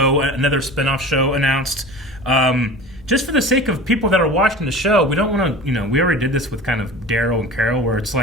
another spinoff show announced. Just for the sake of people that are watching the show, we don't want to, we already did this with kind of Daryl and Carol, where it's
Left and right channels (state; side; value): normal; both; correlation 0.37